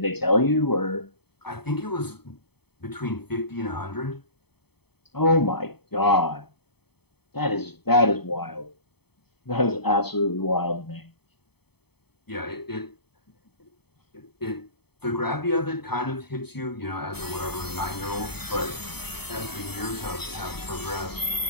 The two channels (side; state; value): right; late; 0.97 ms